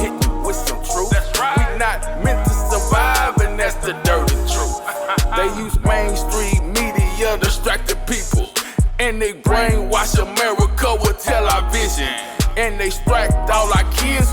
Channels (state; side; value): identical; both; correlation 1.00